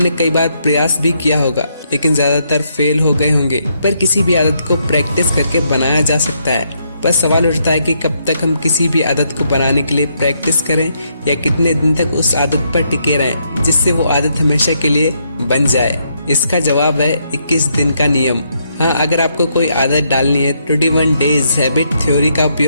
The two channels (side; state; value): both; inverted; correlation -0.75